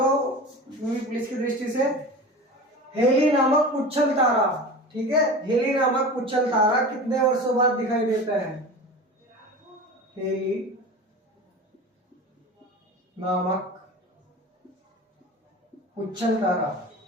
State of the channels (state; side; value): normal; both; correlation 0.33